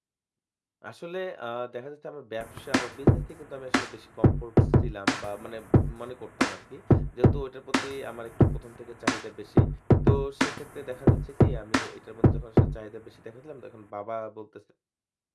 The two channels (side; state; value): both; identical; correlation 1.00